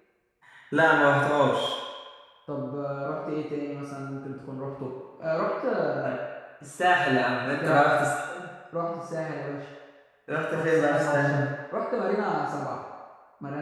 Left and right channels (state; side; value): identical; both; correlation 1.00